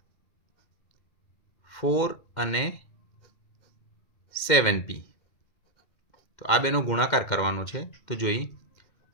4 અને 7p. તો આ બેનો ગુણાકાર કરવાનો છે. તો જોઈ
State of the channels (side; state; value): right; late; 2.1 ms